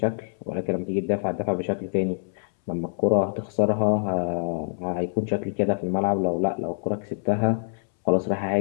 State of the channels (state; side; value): silent; right; 61 dB below the other